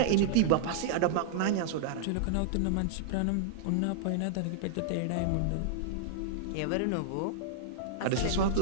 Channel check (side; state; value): both; different; correlation -0.01